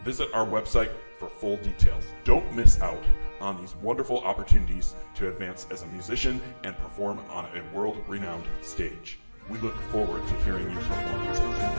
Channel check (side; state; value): both; inverted; correlation -1.00